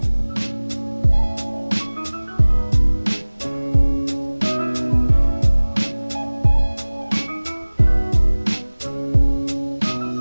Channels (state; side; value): inverted; both; correlation -1.00